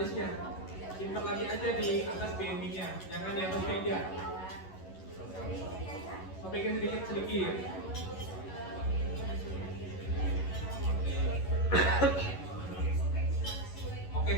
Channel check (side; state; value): right; late; 11 ms